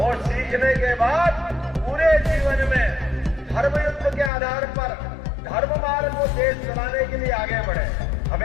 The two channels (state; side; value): drops out; right; at 4.3 s